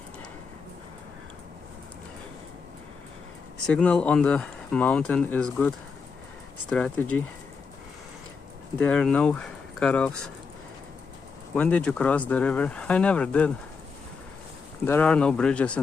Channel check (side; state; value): right; quieter; 5.2 dB